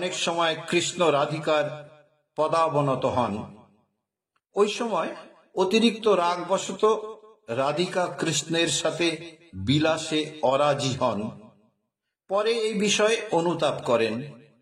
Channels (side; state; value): both; identical; correlation 1.00